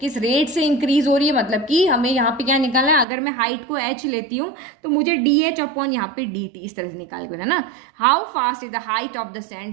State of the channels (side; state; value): left; drops out; at 3.1 s